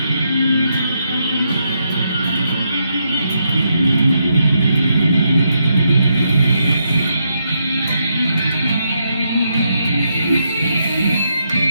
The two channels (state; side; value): inverted; both; correlation -0.80